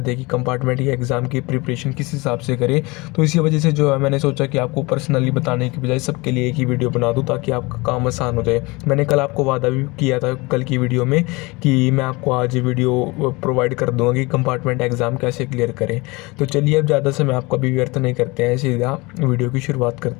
थे कि कंपार्टमेंट के एग्ज़ाम की प्रिपरेशन किस हिसाब से करें, तो इसी वजह से जो है मैंने सोचा कि आपको पर्सनली बताने की बजाय सबके लिए एक ही वीडियो बना दूँ ताकि आपका काम आसान हो जाए। मैंने कल आपको वादा भी किया था कल की वीडियो में कि मैं आपको आज वीडियो प्रोवाइड कर दूँगा कि कंपार्टमेंट एग्ज़ाम कैसे क्लियर करें। तो चलिए अब ज़्यादा समय आपका भी व्यर्थ नहीं करते हैं, सीधा वीडियो की शुरुआत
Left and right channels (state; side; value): quieter; right; 24.6 dB